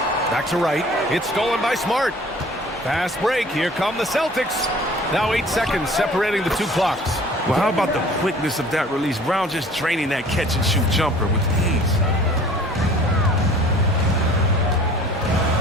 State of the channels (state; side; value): normal; both; correlation 0.49